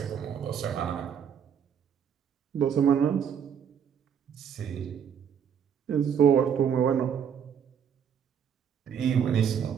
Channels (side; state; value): left; quieter; 7.9 dB